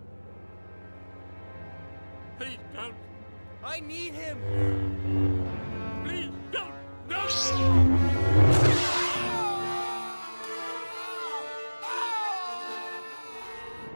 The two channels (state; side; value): inverted; both; correlation -1.00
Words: Please don't. I need him. Please don't. No!